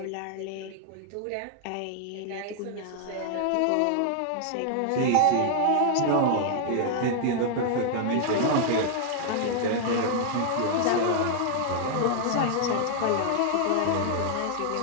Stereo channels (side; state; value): both; different; correlation 0.00